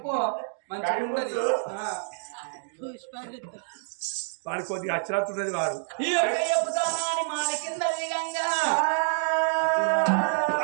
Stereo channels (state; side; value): silent; left; digital silence